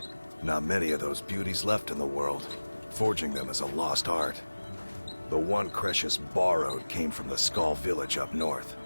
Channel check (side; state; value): both; inverted; correlation -1.00